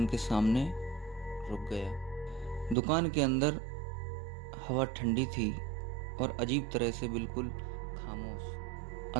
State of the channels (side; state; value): left; drops out; at 2.8 s